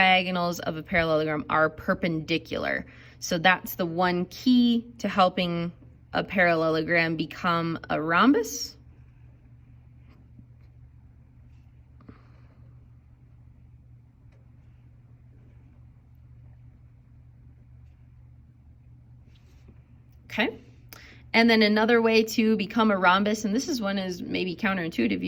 of a parallelogram are perpendicular. So that's the one key to helping a parallelogram become a rhombus. Okay, and then another way to become a rhombus, and this is one is maybe counterintuitive,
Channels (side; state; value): both; identical; correlation 1.00